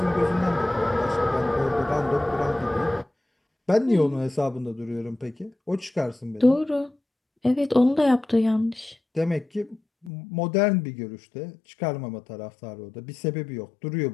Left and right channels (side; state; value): right; drops out; at 10.1 s